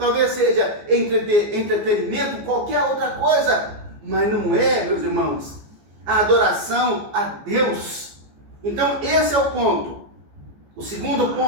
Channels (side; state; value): left; late; 14 ms